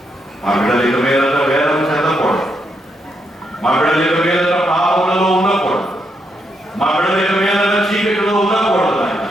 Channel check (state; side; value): normal; both; correlation 0.79